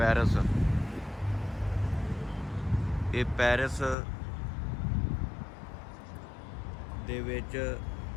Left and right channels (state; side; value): drops out; right; at 4.0 s